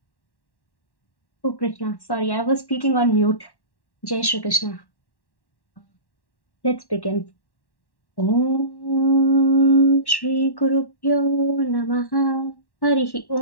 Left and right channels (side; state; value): right; late; 1.1 ms